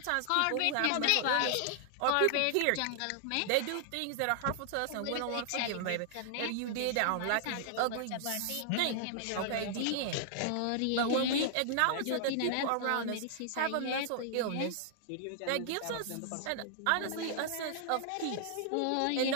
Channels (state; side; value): different; both; correlation -0.01